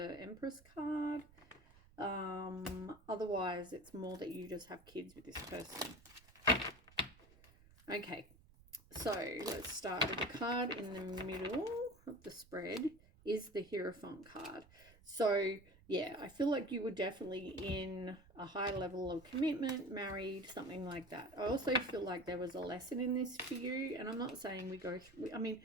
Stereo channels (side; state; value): right; noise; rumble, 25 dB below the sound